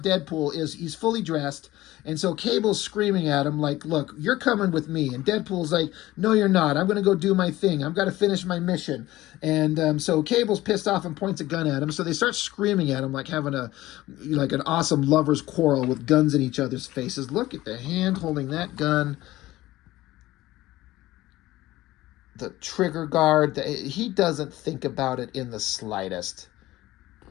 Deadpool, he's fully dressed. And so Cable's screaming at him like, look, you're coming with me. And Deadpool's like, no, you're not. I'm going to go do my thing. I've got to finish my mission. And so Cable's pissed off and points a gun at him. So they start screaming at him like having an awesome lover's quarrel with guns in each other's faces. Look at the hand holding that gun. The trigger guard. He doesn't think about it in the slightest.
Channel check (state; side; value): quieter; right; 16.8 dB